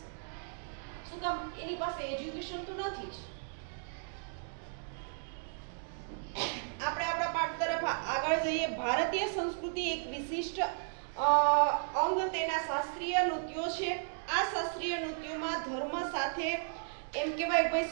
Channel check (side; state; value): left; silent; digital silence